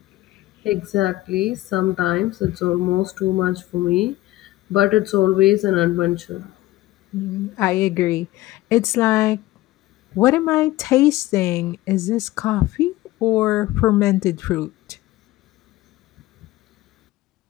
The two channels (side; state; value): right; quieter; 17.3 dB